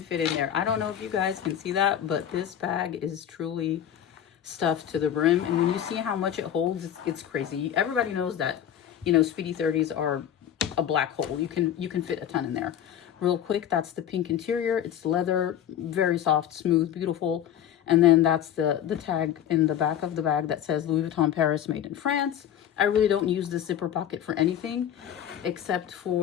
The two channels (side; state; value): right; quieter; 10.2 dB